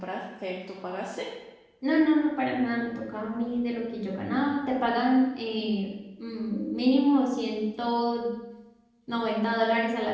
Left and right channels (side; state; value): both; identical; correlation 1.00